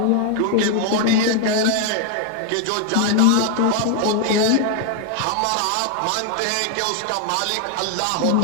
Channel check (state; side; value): different; both; correlation 0.00